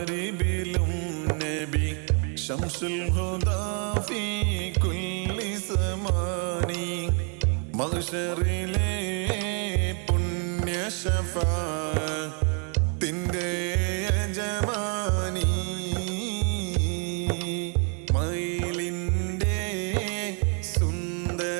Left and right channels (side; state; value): left; quieter; 39.3 dB